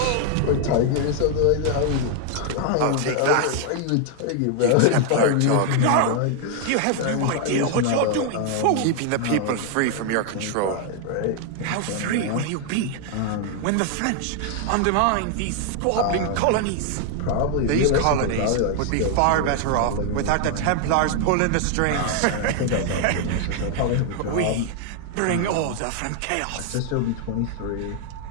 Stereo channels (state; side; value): different; both; correlation 0.00